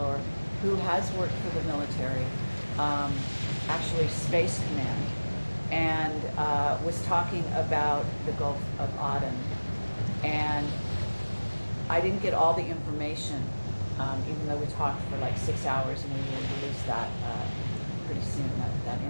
who has worked for the military, actually Space Command, and was talking about the Gulf of Aden. And I didn't get all the information, even though we talked for like 6 hours, and we will release that pretty soon, that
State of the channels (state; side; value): inverted; both; correlation -1.00